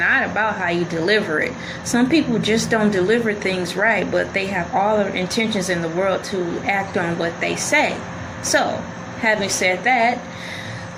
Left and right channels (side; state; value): both; identical; correlation 1.00